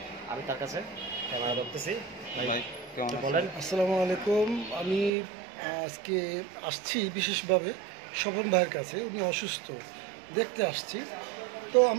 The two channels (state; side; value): drops out; left; at 5.1 s